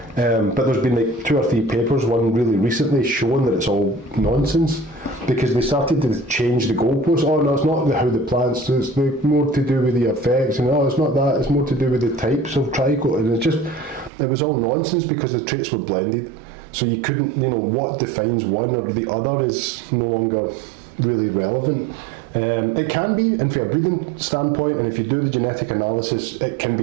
But there's been like 2 or 3 papers, one really recently, showing that it's all nonsense, because they started to change the goalposts. Oh no, it's not how the plants, it's more to do with the effects, and it's not that, it's more to do with the types of trichol, and it was all nonsense because the traits were blended. So you couldn't, what defines one or the other is no longer really relevant. It can be, and from a breeding standpoint, and if you do the genetic analysis, it can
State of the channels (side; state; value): left; drops out; at 14.1 s